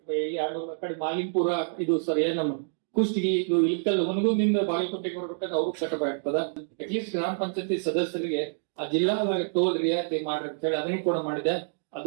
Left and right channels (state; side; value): silent; left; digital silence